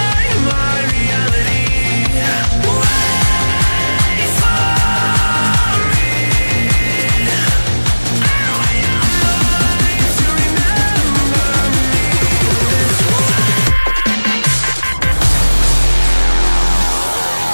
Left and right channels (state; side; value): inverted; both; correlation -1.00